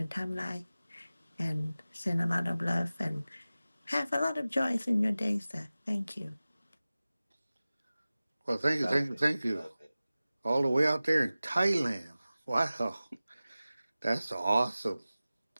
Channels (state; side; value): inverted; both; correlation -0.97